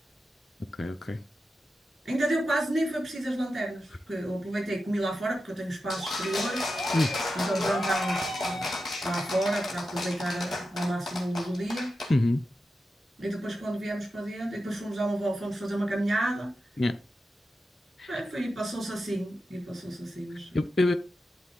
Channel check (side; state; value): both; normal; correlation 0.90